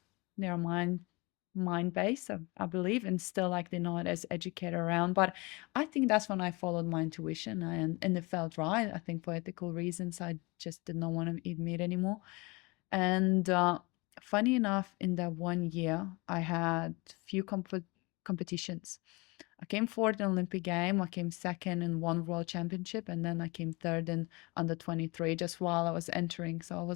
mind based, I believe, and still like they're not as educated around. But I think that's when I followed my intuition and it felt right. I think for ethical reasons, I just did not want to eat meat anymore. And funny enough, in that 1 year, I had few competitions. I came fourth in Olympic game. I came second in one world championship, and then I came third in under 23 just while I was entering. So I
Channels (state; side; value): quieter; right; 25.8 dB